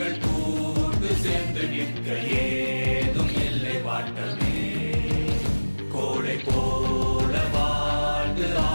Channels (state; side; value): inverted; both; correlation -1.00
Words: கூட்டு சேர்ந்து நிற்க ஏதும் இல்லை வாட்டமே. கோளை போல வாழ்ந்து